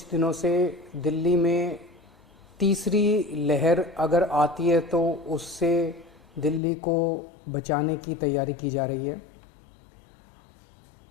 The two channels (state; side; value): drops out; right; at 6.6 s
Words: दिनों से दिल्ली में तीसरी लहर अगर आती है तो उससे दिल्ली को बचाने की तैयारी की जा रही है।